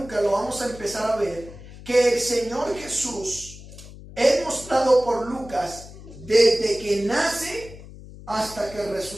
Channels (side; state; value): left; noise; hum, 16 dB below the sound